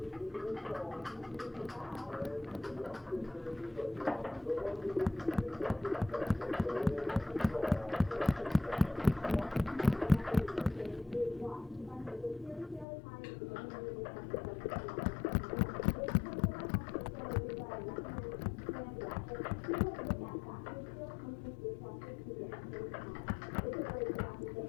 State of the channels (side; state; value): right; drops out; at 12.9 s